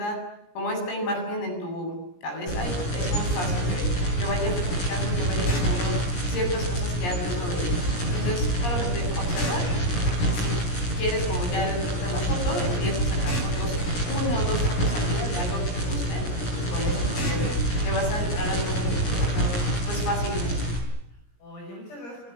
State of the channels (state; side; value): late; right; 17 ms